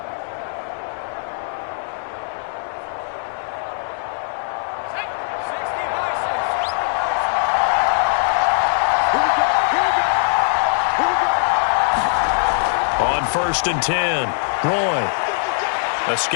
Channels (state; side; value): silent; right; digital silence